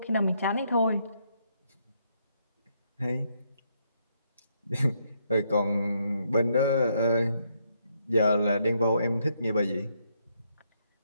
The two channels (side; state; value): both; inverted; correlation -0.75